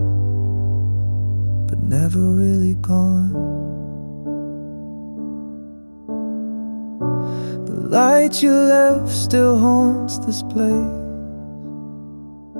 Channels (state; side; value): inverted; both; correlation -1.00